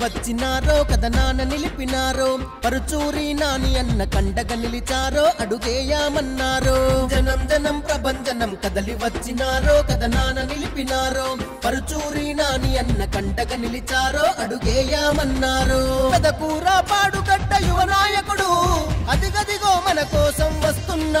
వచ్చినారో కథనాన నిలిపినారో పరుచూరి నాని అన్న కండగా నిలిచారో అడుగేయామన్నారో జనం జనం ప్రభంజనం కదలి వచ్చినారో కథనాన నిలిపినారో పరుచూరి నాని అన్న కండగా నిలిచారో అడుగేయామన్నారో పెదకూర పాడుగడ్డ యువ నాయకుడు అదిగదిగో మన కోసం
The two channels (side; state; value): both; identical; correlation 1.00